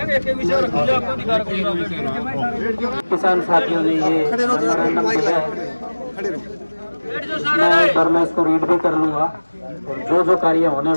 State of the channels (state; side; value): inverted; both; correlation -1.00